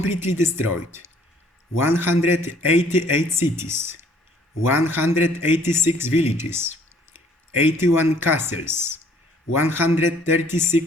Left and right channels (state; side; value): normal; both; correlation 0.60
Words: destroyed 188 cities, 186 villages, 81 castles,